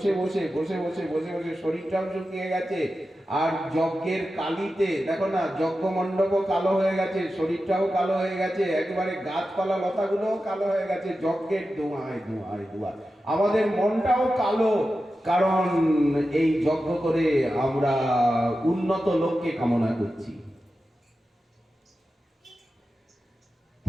বসে বসে বসে বসে বসে শরীরটাও শুকিয়ে গেছে, আর যজ্ঞের কালিতে দেখো না, যজ্ঞ মণ্ডপও কালো হয়ে গেছে, শরীরটাও কালো হয়ে গেছে, একেবারে গাছপালা লতাগুলোও কালো হয়ে গেছে যজ্ঞের ধোঁয়ায় ধোঁয়ায় ধোঁয়া। আমাদের মনটাও কালো, কারণ এই যজ্ঞ করে আমরা উন্নত লোককে কামনা করছি।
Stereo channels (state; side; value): normal; both; correlation 0.92